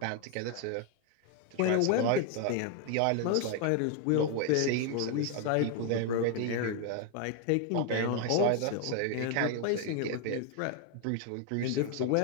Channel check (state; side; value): different; both; correlation 0.01